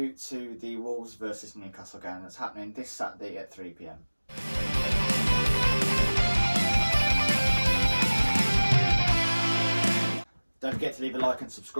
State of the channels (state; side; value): inverted; both; correlation -1.00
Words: to the Wolves versus Newcastle game that's happening this Saturday at 3 p.m. Don't forget to leave a like and